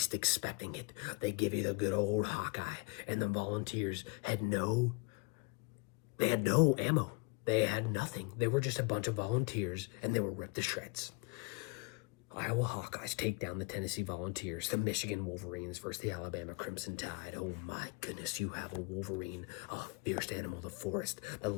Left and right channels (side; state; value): right; quieter; 27.3 dB